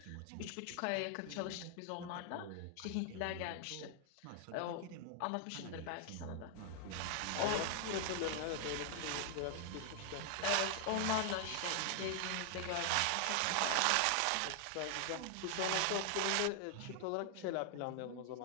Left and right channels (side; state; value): both; different; correlation 0.00